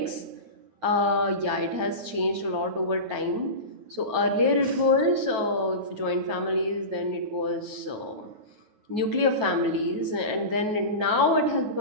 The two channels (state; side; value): late; left; 9.3 ms